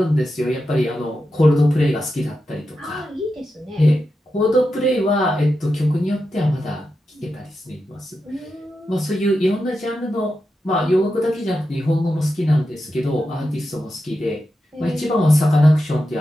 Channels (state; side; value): normal; both; correlation 0.89